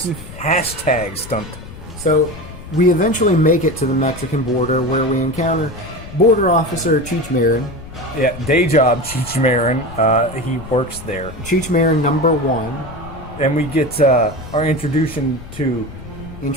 Hashtag stunt. So, we eventually make it to the Mexican border where we encounter Border Officer Cheech Marin. Yeah, day job, Cheech Marin. He works there. Cheech Marin number 1. And we get our introduction to...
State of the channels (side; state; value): left; noise; rumble, 14 dB below the sound